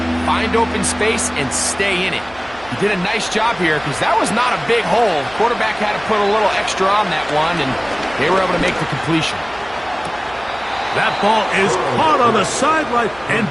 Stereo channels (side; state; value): right; noise; hum, 23 dB below the sound